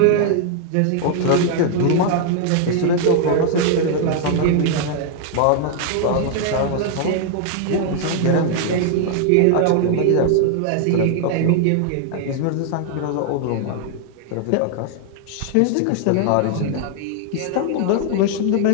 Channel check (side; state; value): both; different; correlation 0.00